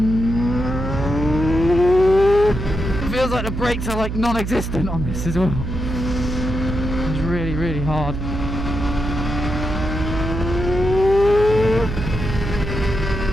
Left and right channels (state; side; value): noise; right; hum, 4 dB below the sound